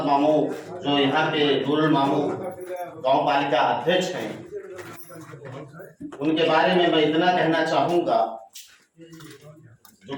मामू, जो यहाँ के नूरुल मामू गांव पालिका अध्यक्ष हैं, उनके बारे में मैं इतना कहना चाहूंगा जो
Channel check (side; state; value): both; identical; correlation 1.00